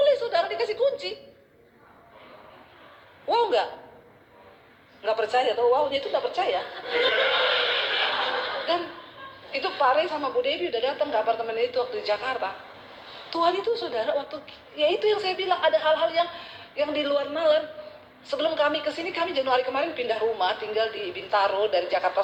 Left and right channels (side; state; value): both; identical; correlation 1.00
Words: saudara, dikasih kunci. Wow enggak? Enggak percaya atau wownya itu enggak percaya. Dan itu Pak Rey sama Bu Devi udah datang ke apartemen itu waktu di Jakarta. Tuhan itu saudara waktu, ya itu yang saya bilang ada hal-hal yang di luar nalar. Sebelum kami kesini, kami Januari kemarin pindah rumah, tinggal di Bintaro dari Jakarta